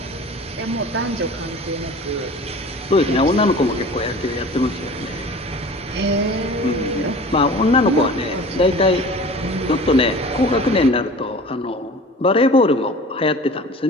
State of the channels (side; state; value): both; normal; correlation 0.41